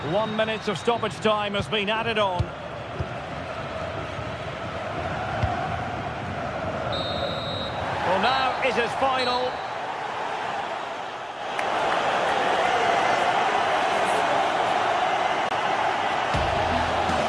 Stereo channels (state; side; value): identical; both; correlation 1.00